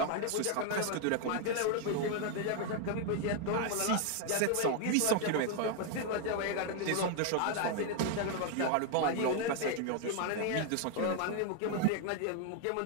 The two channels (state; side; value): different; both; correlation 0.00